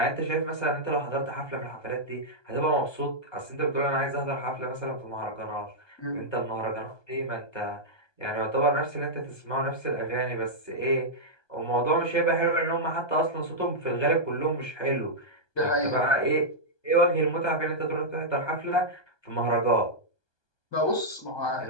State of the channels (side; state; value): right; late; 1.2 ms